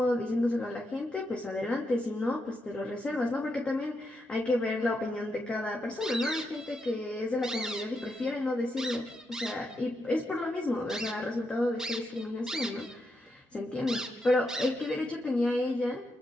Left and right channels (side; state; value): both; normal; correlation 0.83